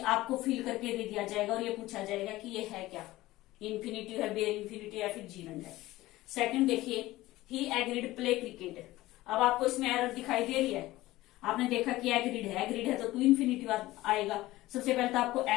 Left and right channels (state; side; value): quieter; right; 17.5 dB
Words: आपको फिल करके दे दिया जाएगा और ये पूछा जाएगा कि ये है क्या, इन्फिनिटिव है, बेयर इन्फिनिटिव या फिर जीरंड है। सेकंड देखिए, ही एग्रीड प्ले क्रिकेट। अब आपको इसमें एरर दिखाई दे रही है, आपने देखा कि एग्रीड है तो टू इन्फिनिटिव आएगा। सबसे पहले तो आपको